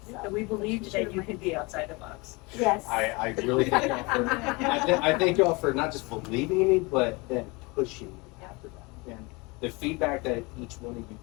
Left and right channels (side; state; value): right; quieter; 26.5 dB